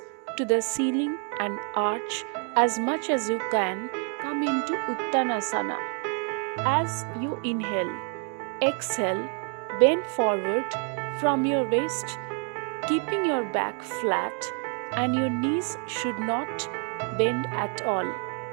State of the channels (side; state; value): left; quieter; 38.2 dB